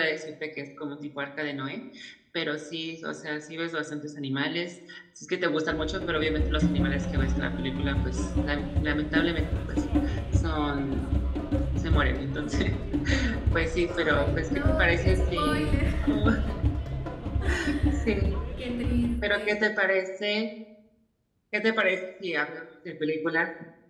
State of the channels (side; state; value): both; identical; correlation 1.00